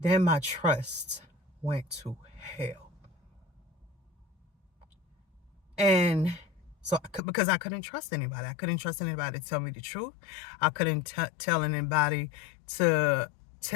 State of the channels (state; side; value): drops out; right; at 7.2 s